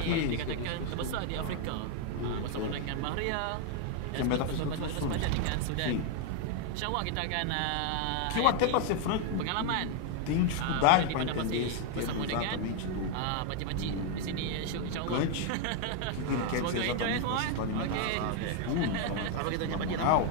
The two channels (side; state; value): both; different; correlation 0.01